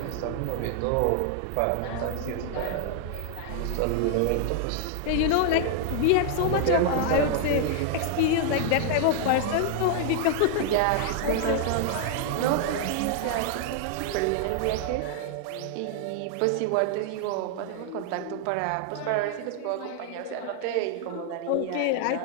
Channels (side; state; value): both; different; correlation 0.00